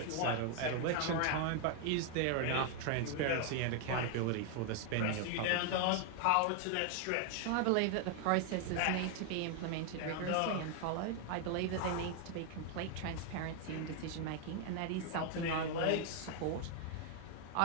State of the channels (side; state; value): both; different; correlation 0.00